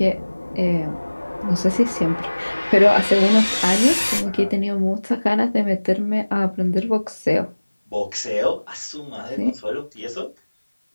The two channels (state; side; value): inverted; both; correlation -1.00